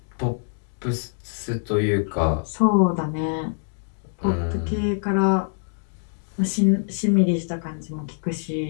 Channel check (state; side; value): silent; right; digital silence